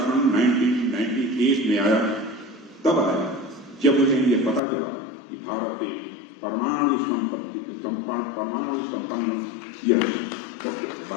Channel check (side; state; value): right; drops out; at 4.6 s